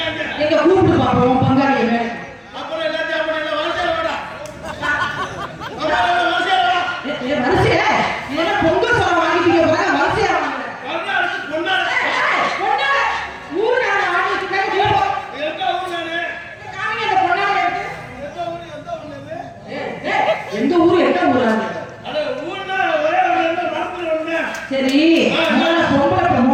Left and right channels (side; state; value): both; identical; correlation 1.00